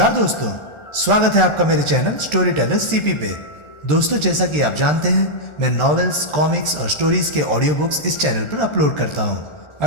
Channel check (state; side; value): late; right; 1.4 ms